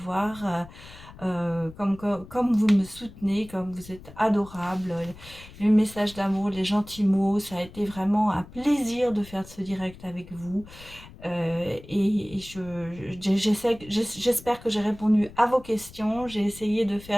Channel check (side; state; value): left; noise; rumble, 19 dB below the sound